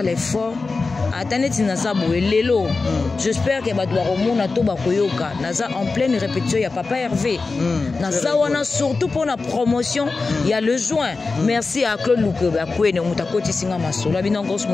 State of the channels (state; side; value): quieter; right; 4.0 dB